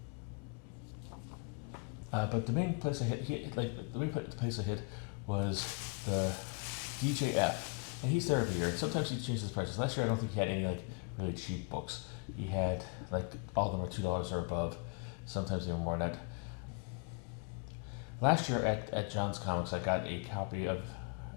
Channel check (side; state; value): right; quieter; 32.1 dB